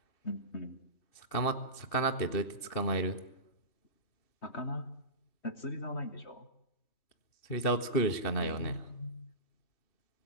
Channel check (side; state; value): right; late; 2.7 ms